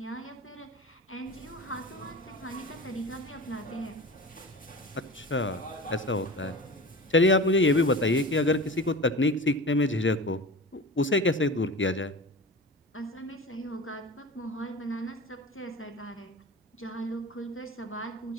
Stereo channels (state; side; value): normal; both; correlation 0.33